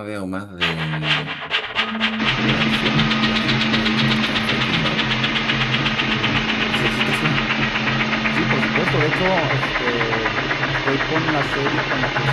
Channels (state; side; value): identical; both; correlation 1.00